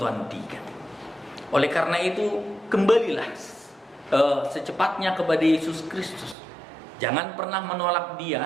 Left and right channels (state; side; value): drops out; left; at 6.4 s